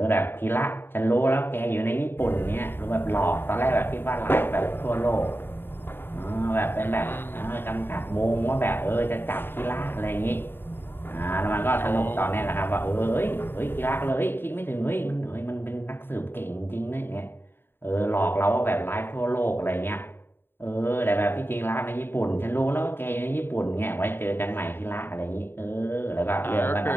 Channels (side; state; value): right; late; 0.10 ms